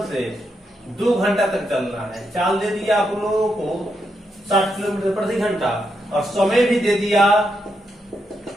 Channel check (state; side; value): normal; both; correlation 0.82